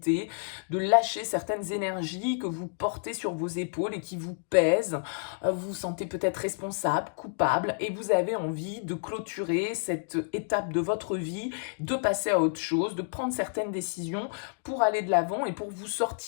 de lâcher certaines énergies que vous portez sur vos épaules et qui vous pèsent. Vous vous sentez peut-être responsable, coupable et vous avez envie de clôturer cette étape de votre vie, de passer à autre chose, de prendre certaines décisions pour aller de l'avant et pour vous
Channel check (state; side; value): silent; right; digital silence